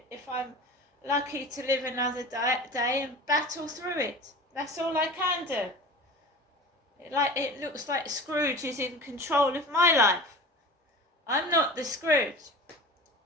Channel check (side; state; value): both; normal; correlation 0.37